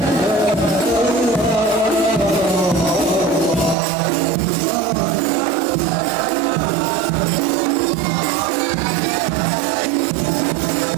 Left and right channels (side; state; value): left; drops out; at 3.8 s